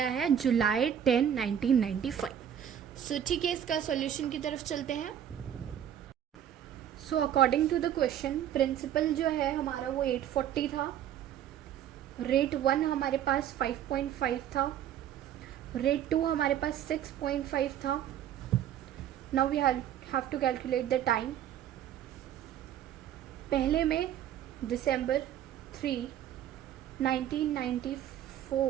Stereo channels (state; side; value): quieter; left; 10.2 dB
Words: है July 10 1995। सो ठीक है, इसका सॉल्यूशन की तरफ चलते हैं। So according to the question, principal जो है हमारा वो 840 था, रेट 1 हमारे पास 5.5 था, रेट 2 हमारे पास 6.5 था। Now we have to calculate the time. पहले में December 3